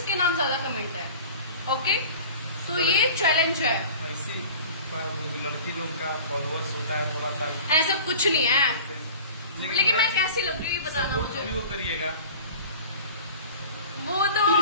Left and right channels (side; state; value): both; inverted; correlation -0.41